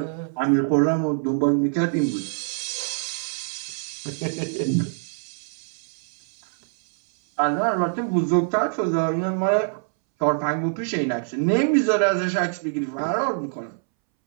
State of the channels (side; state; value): left; silent; 62 dB below the other